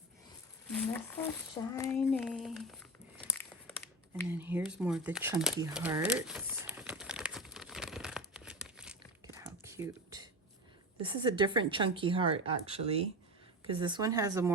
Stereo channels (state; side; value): normal; both; correlation 0.25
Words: That's so shiny. And then here's more of the chunky hearts. Look at how cute. This is a different chunky heart, actually, because this one has a